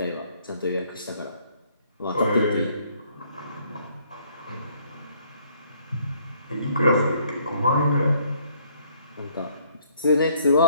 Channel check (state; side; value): inverted; both; correlation -0.65